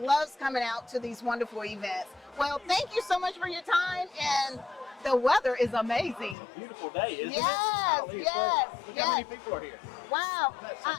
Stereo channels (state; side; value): drops out; right; at 6.4 s